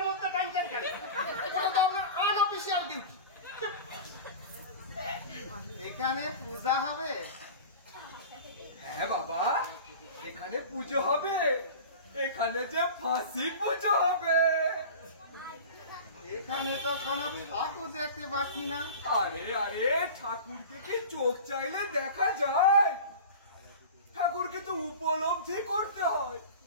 মধ্যে টানছেন কেন? ওটা তো আপনার আনঅফিসিয়াল ডিউটি। এখানে পূজা হবে? হ্যাঁ বাবা, এখানে পুজো হবে, এখানে যে ফাঁসি পুজো হবে। এখানে তো কোনো ঠাকুর দেখতে পাচ্ছি না। আরে ঠাকুরকে কি চোখ চাইলে দেখা যায়? ঠাকুরকে তো উপলব্ধি করতে হয়।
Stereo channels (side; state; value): both; inverted; correlation -0.35